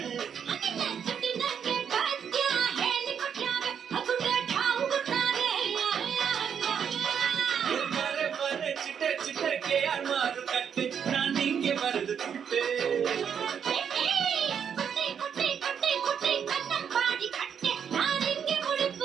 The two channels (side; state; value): left; quieter; 7.7 dB